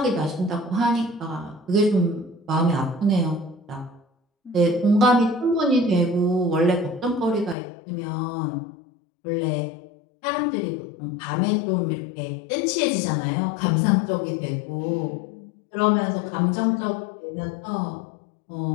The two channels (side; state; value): right; drops out; at 7.6 s